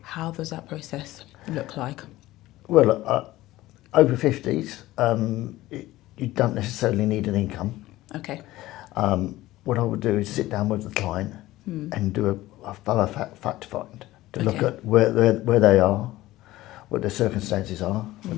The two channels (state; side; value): quieter; right; 16.8 dB